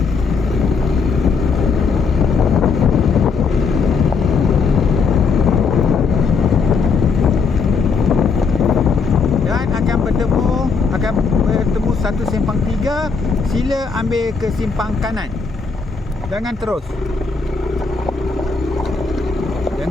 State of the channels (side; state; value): right; quieter; 5.0 dB